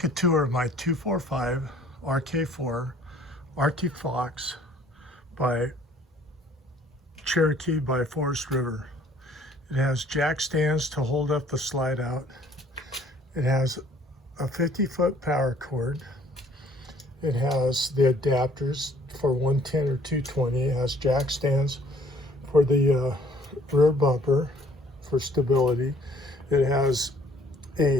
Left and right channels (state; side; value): normal; both; correlation 0.58